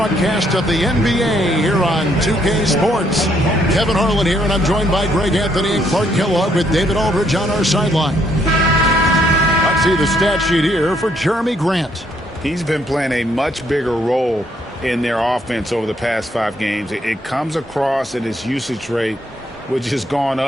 of the NBA here on 2K Sports. Kevin Harlan here, and I'm joined by Greg Anthony and Clark Kellogg with David Aldridge on our sideline. Let's see the stat sheet here for Jeremy Grant. He's been playing a much bigger role in their offense over the past 5 games. It comes across at his usage rate, which has gone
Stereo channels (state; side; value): normal; both; correlation 0.71